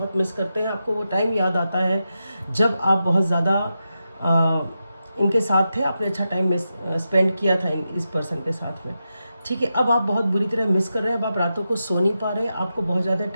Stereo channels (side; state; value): both; inverted; correlation -0.88